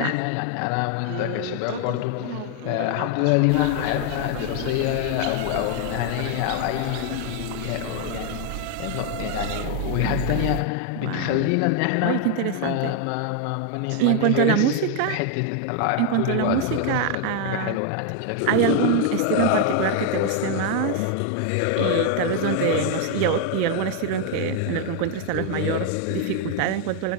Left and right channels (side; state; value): both; different; correlation 0.01